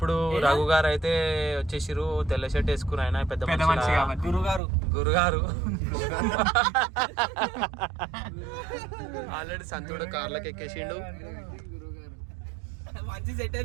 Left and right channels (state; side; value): drops out; left; at 4.6 s